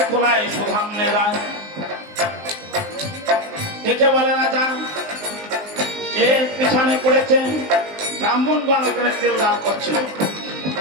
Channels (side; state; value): left; late; 19 ms